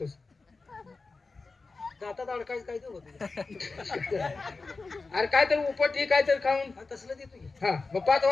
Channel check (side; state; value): right; quieter; 3.9 dB